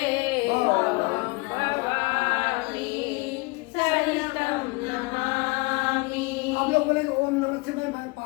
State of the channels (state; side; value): quieter; right; 26.2 dB